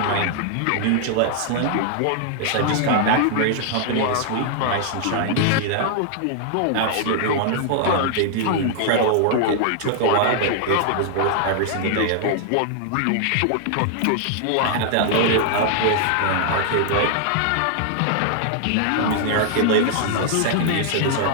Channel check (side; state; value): both; different; correlation 0.00